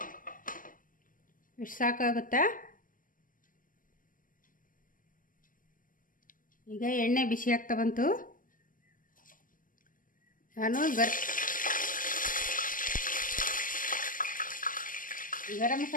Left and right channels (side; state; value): right; late; 0.40 ms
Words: ಇಷ್ಟು ಸಾಕಾಗುತ್ತಾ? ಈಗ ಎಣ್ಣೆ ಬಿಸಿ ಆಗ್ತಾ ಬಂತು. ನಾನು ಗರಂ